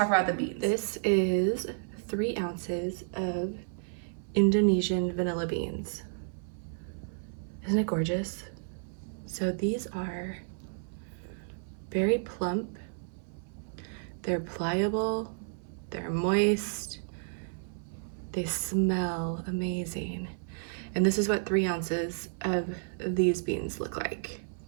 about the beans. This is 3 ounces of Indonesian vanilla beans. Isn't it gorgeous? So these are very plump, they're pliable, they're moist, they smell amazing. And this is what 3 ounces of these beans look like.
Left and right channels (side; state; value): left; silent; 57 dB below the other